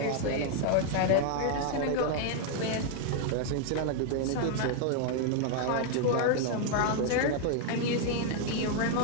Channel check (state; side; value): different; both; correlation 0.00